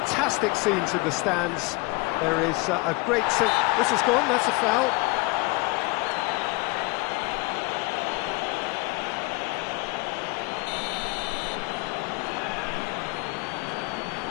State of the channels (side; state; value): right; quieter; 25.6 dB